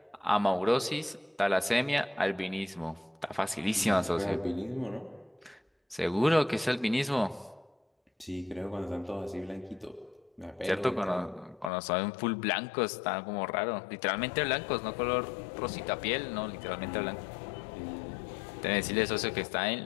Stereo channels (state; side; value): drops out; right; at 11.7 s